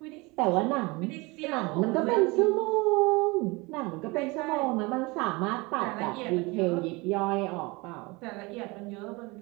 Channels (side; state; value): left; quieter; 25.1 dB